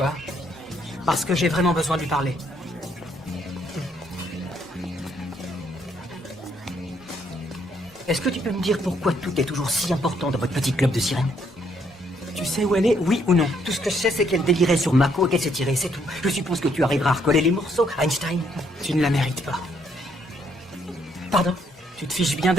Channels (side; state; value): both; normal; correlation 0.70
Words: Parce que j'ai vraiment besoin de lui parler. Est-ce que tu peux me dire pourquoi tout est toujours si important dans votre petit club de sirènes? Tu sais où elle est, oui ou non? Tout ce que je sais, c'est qu'elle délirait sur Mako et qu'elle s'est tirée, c'est tout. Je suppose que tu arriveras à recoller les morceaux, Einstein. Tu ne la mérites pas. Pardon? Tu te fiches bien